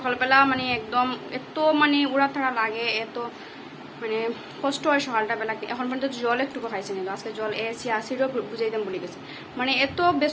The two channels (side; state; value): both; identical; correlation 1.00